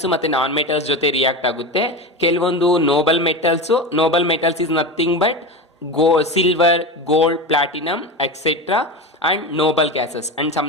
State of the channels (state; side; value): normal; both; correlation 0.23